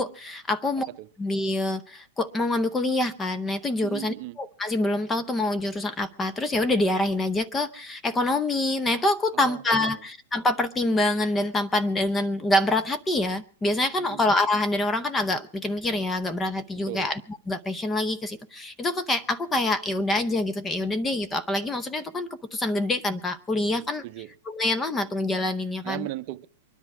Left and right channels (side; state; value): both; normal; correlation 0.68